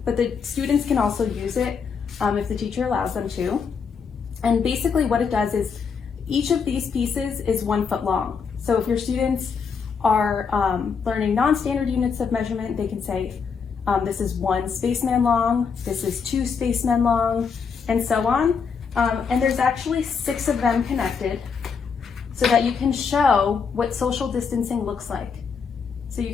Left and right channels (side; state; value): right; quieter; 5.9 dB